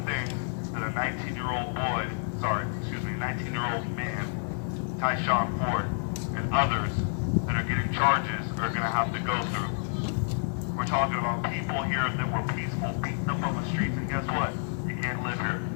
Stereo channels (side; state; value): right; silent; digital silence